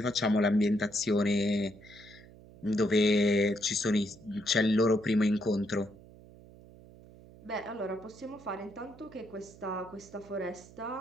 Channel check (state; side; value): noise; right; hum, 21 dB below the sound